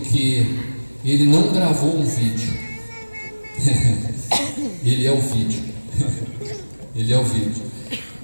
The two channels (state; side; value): inverted; both; correlation -1.00